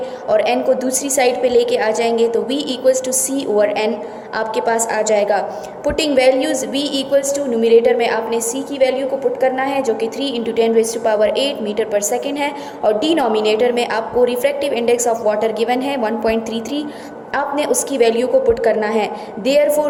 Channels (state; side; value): identical; both; correlation 1.00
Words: और n को दूसरी साइड पे लेके आ जाएंगे तो v equals to c over n आपके पास आ जाएगा। Putting values v equals to numerator में आपने c की वैल्यू को पुट करना है जो कि 3 × 10⁸ मीटर पर सेकेंड है और डिनोमिनेटर में आपको refractive index of water given है 1.33, आपने उसकी वैल्यू को पुट करना है।